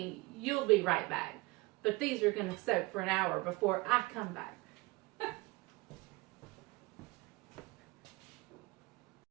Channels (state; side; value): quieter; left; 23.1 dB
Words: you'll be right back. But these are going to soak for 1 hour before I come back.